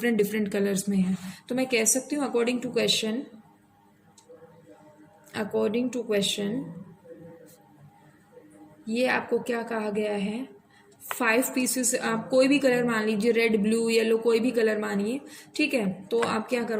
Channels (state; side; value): identical; both; correlation 1.00